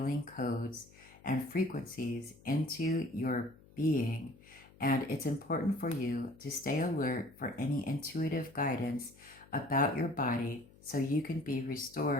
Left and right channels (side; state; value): left; noise; hum, 25 dB below the sound